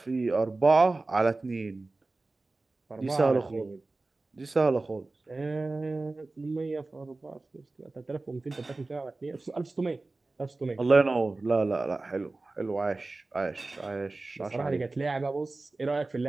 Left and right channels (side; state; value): left; quieter; 3.3 dB